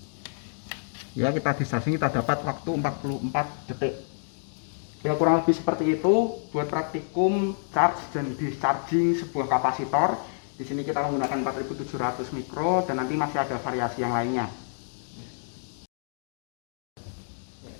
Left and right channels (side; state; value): right; silent; digital silence